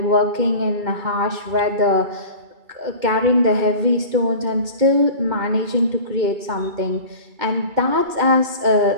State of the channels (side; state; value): left; late; 2.1 ms